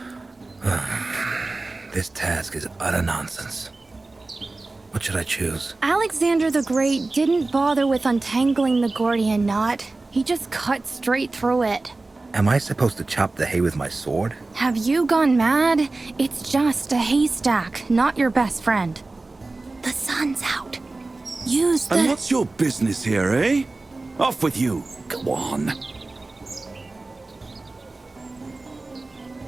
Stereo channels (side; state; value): left; quieter; 3.3 dB